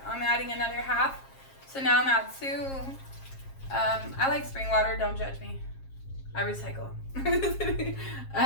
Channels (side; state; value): right; late; 7.4 ms